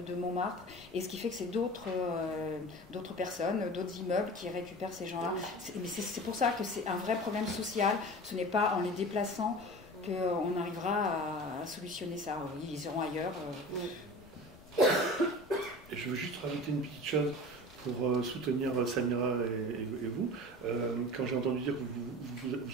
Montmartre. Et ce qui fait que c'est d'autres personnes, d'autres immeubles qui récupèrent ces gens-là. Mais c'est pour ça que c'est un vrai problème social. Ce n'est pas en les déplaçant qu'on arrivera à solutionner ça. Oui, ils iront ailleurs. Et je veux juste rajouter une petite chose pour soutenir Samira et vous. Quand j'ai entendu dire que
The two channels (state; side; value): noise; left; rumble, 23 dB below the sound